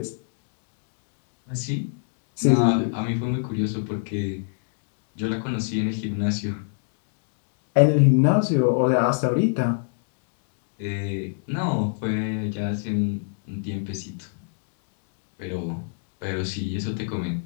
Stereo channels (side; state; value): right; silent; digital silence